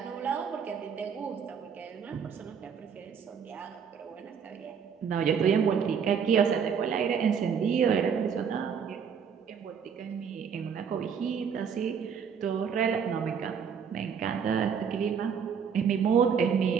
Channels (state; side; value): quieter; left; 6.9 dB